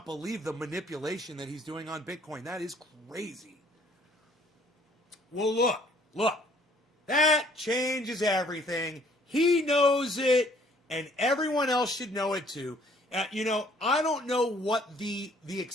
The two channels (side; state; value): both; normal; correlation 0.60